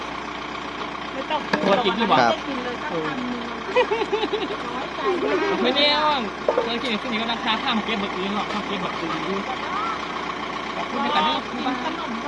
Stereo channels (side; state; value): both; identical; correlation 1.00